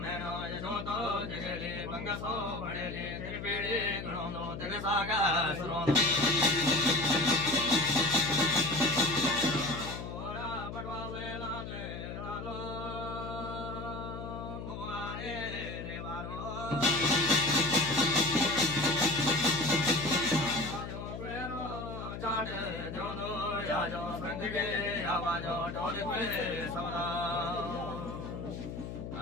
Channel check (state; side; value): noise; left; hum, 8 dB below the sound